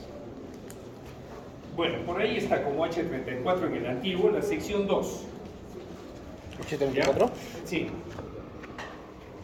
Bueno, por ahí está como H34 en el antiguo, la sección 2. ¿H34? ¿Ya? Sí.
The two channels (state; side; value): identical; both; correlation 1.00